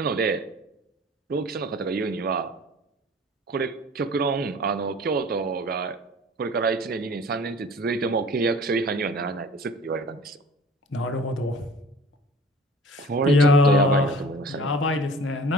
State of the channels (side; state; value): both; normal; correlation 0.45